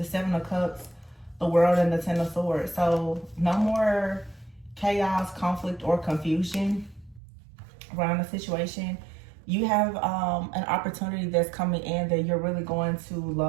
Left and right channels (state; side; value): drops out; left; at 7.2 s